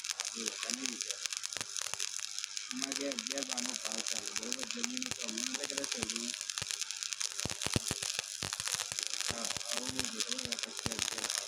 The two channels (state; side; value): identical; both; correlation 1.00